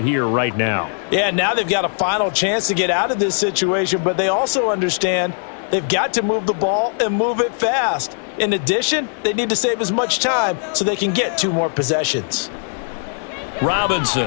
here, right now. Yeah, now they've got a final chance to get out of this situation, but they also understand they've got to move the ball and move it fast. In addition, they need to save as much time so they can get 2 more possessions.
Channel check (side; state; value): right; silent; 64 dB below the other